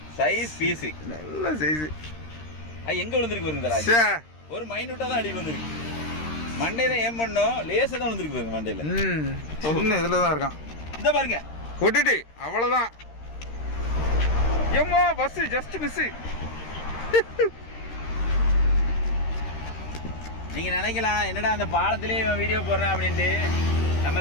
சைஸ் பீஸு, நல்ல சைஸு. அது எங்கே விழுந்துருக்கு வருங்களா? ஒரு மைனூட்டாக தான் அடி விழுந்துருக்கு. மண்டே தான் ஏன் பண்ணோம், லேசாக தான் விழுந்துருக்கு பாருங்க மண்டையில். சின்ன இதில் தான் இருக்கான். இந்த பாருங்க கொட்டுட்டு அவ்வளோதான். ஏம்மா பஸ்ஸு ஜஸ்ட் மிஸ்ஸு. நீங்கள் நினைக்கலாம் என்னடா அந்த பாலத்திலே வீடியோ போடுறேன் அப்படின்ட்டு. நம்ம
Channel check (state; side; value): late; right; 13 ms